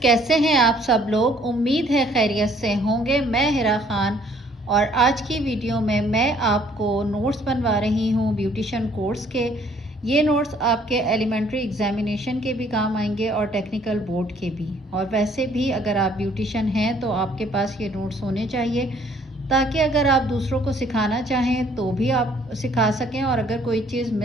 हैं आप सब लोग। उम्मीद है खैरियत से होंगे। मैं हिरा खान और आज की वीडियो में मैं आपको नोट्स बनवा रही हूं ब्यूटिशियन कोर्स के। ये नोट्स आपके एलिमेंट्री एग्जामिनेशन के भी काम आएंगे और टेक्निकल बोर्ड के भी। और वैसे भी अगर आप ब्यूटिशियन हैं तो आपके पास ये नोट्स होने चाहिए, ताकि अगर आप दूसरों को सिखाना चाहें तो भी आप सिखा सकें, और अगर कोई चीज़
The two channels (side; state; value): both; normal; correlation 0.61